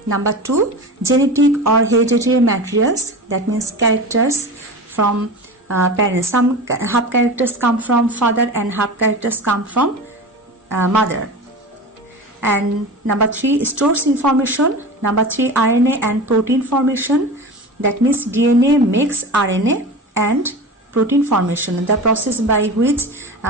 Number 2, genetic or hereditary materials, that means characters from parents. Some half characters come from father and half characters come from mother. And number 3, stores information. Number 3, RNA and protein formation, that means DNA makes RNA and protein formation. The process by which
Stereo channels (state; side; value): normal; both; correlation 0.30